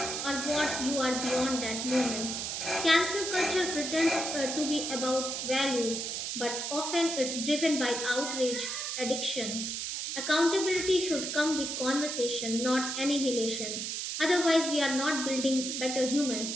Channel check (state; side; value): noise; right; hiss, 3 dB below the sound